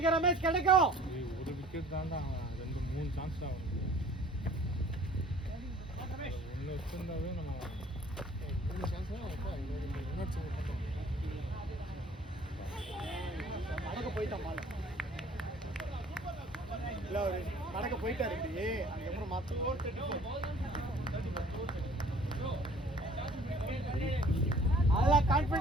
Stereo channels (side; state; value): both; normal; correlation 0.53